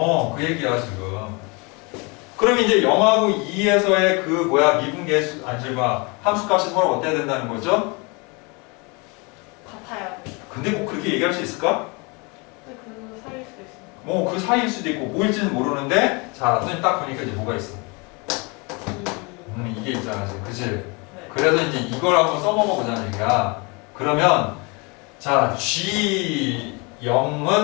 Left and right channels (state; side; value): quieter; right; 29.5 dB